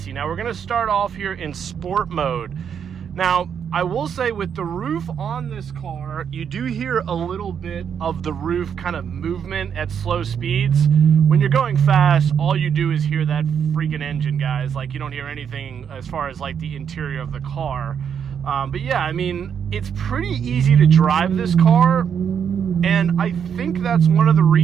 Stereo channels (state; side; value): quieter; left; 7.8 dB